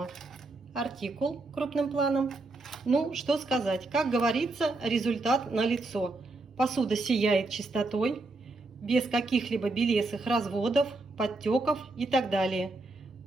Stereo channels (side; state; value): left; quieter; 3.1 dB